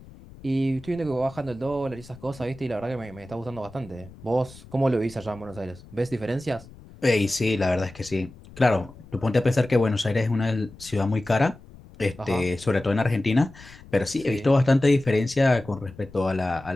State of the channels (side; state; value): left; noise; rumble, 20 dB below the sound